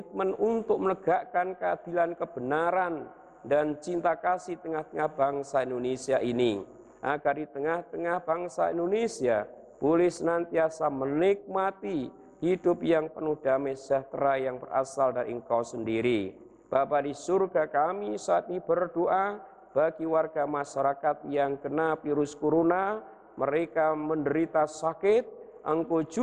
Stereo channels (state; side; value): identical; both; correlation 1.00